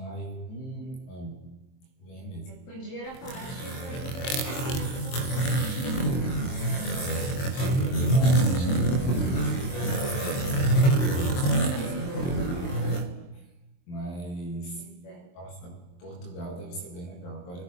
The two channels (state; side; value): late; right; 23 ms